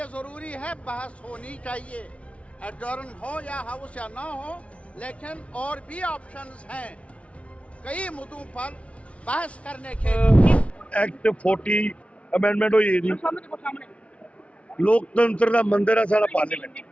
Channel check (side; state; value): right; late; 0.063 ms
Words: जरूरी है, बहस होनी चाहिए, एडजर्न हो या हाउस या ना हो, लेकिन और भी ऑप्शंस हैं कई मुद्दों पर बहस करने के। एक्ट 40 अमेंडमेंट हुई जी। लोकतंत्र का मंदिर है सारा पार्लियामेंट।